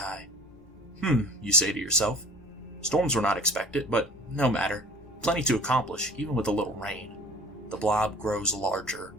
You say to yourself. Storms were not expected, but no matter. Plenty to accomplish, even with a little rain. The blob grows larger.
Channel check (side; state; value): both; normal; correlation 0.46